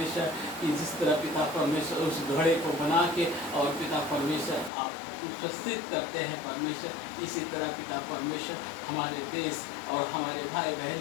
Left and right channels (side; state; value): right; drops out; at 4.7 s